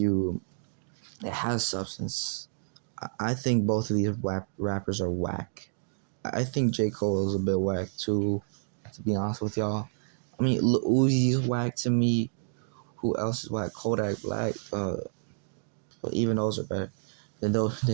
it has substance. I think both of these rappers are whack. I think J. Cole is a bit whack too, to be honest with y'all. I mean, Lil Uzi's whack to me. Who else is whack? Kodak Black. But even those are better than those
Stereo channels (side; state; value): left; silent; digital silence